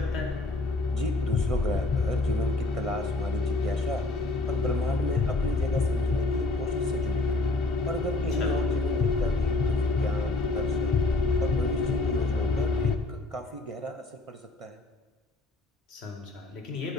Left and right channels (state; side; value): quieter; right; 3.0 dB